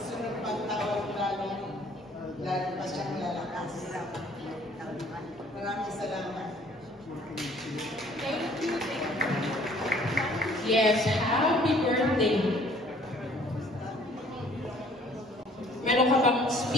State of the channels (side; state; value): both; normal; correlation 0.57